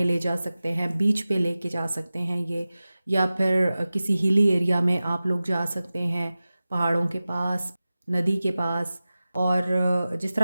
ले जा सकते हैं, बीच पे लेके जा सकते हैं ये, या फिर किसी हिली एरिया में आप लोग जा सकते हैं, पहाड़ों के पास, नदी के पास। और जिस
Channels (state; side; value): inverted; both; correlation -0.96